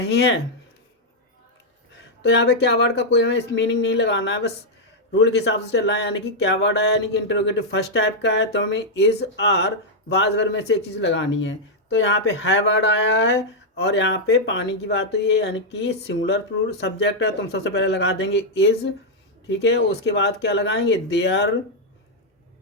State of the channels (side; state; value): both; normal; correlation -0.03